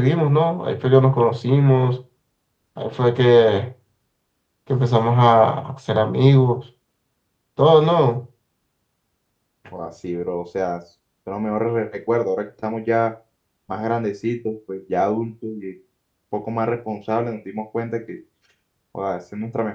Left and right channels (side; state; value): both; identical; correlation 1.00